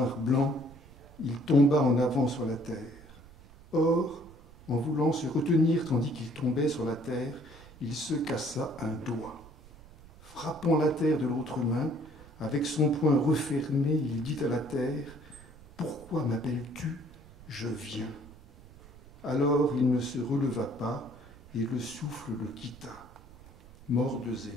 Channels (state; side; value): noise; right; rumble, 21 dB below the sound